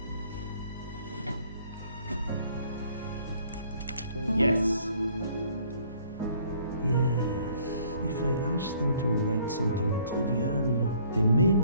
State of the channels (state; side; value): inverted; both; correlation -0.60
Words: Yes. Yes. If I ask them to write something trivial, they may